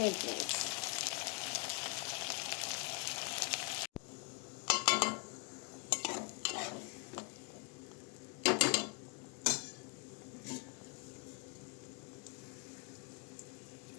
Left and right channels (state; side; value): quieter; right; 32.9 dB